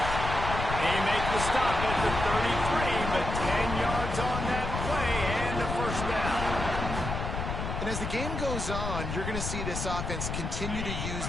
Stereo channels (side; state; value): left; noise; rumble, 4 dB below the sound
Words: He makes the stop at the 33, but And as the game goes on, you're going to see this offense continue to use